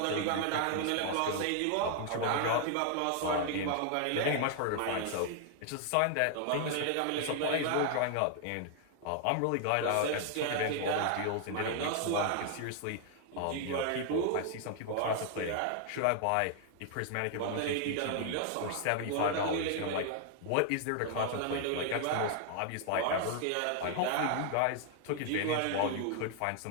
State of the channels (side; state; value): both; different; correlation 0.00